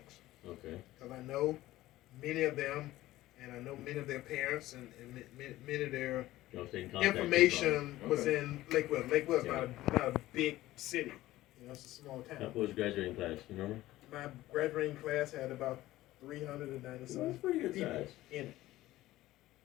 Okay. Because I know many of them, and I know many of their parents, and many of their Y'all stay in contact information with was them. in Lakewood. Lakewood's Yeah. not a big city. It's a small town. What was your graduating class? You remember? My graduating class had about 390 That's some pretty good people size. in it.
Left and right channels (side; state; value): right; quieter; 16.2 dB